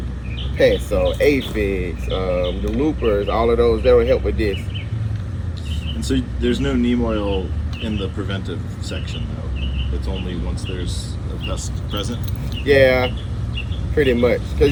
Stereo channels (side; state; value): both; identical; correlation 1.00